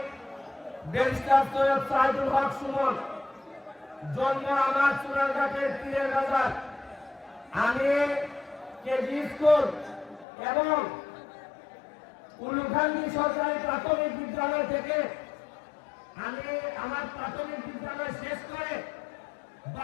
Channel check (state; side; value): drops out; right; at 10.2 s